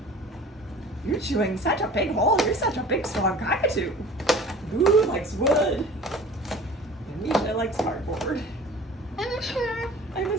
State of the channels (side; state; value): both; normal; correlation 0.43